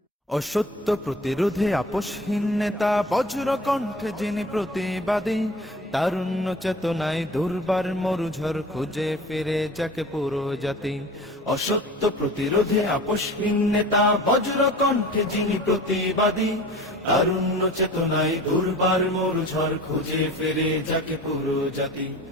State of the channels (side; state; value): both; normal; correlation 0.41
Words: অসত্য প্রতিরোধে আপোষহীন নেতা, বজ্র কণ্ঠে যিনি প্রতিবাদী, তারুণ্য চেতনায় দুর্বার মরুঝড় খুঁজে ফিরে যাকে পুরো জাতি। অসত্য প্রতিরোধে আপোষহীন নেতা, বজ্র কণ্ঠে যিনি প্রতিবাদী, তারুণ্য চেতনায় দুর্বার মরুঝড় খুঁজে ফিরে যাকে পুরো জাতি।